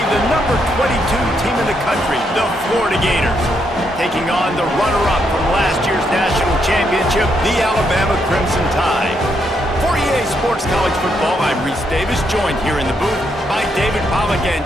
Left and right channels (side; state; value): both; normal; correlation 0.77